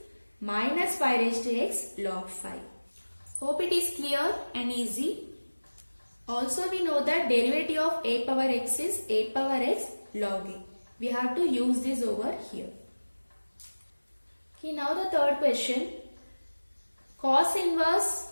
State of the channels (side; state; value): both; inverted; correlation -1.00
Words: minus 5 raised to x log 5. Hope it is clear and easy. Also we know that derivative of a power x is a power x log a. We have to use this over here. Okay, now the third question. Cos inverse